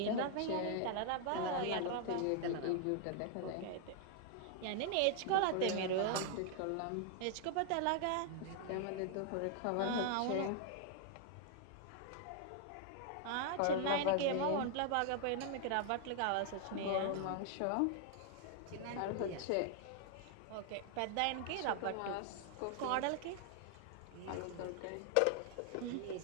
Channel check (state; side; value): different; both; correlation 0.00